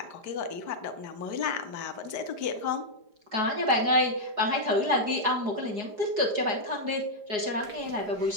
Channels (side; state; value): left; late; 5.0 ms